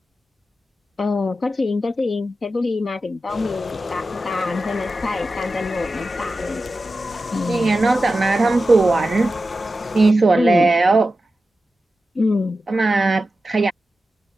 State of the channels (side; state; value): both; normal; correlation 0.92